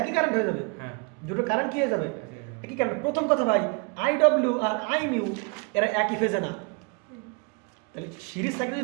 একই কারেন্ট হয়ে যাবে। দুটো কারেন্ট কি হয়ে যাবে? একই কারেন্ট। প্রথম কথা ভাই, আই ডব্লিউ আর আই মিউ এরা একই ফেজে না। তাহলে সিরিজ সার্কিট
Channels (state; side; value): quieter; left; 32.7 dB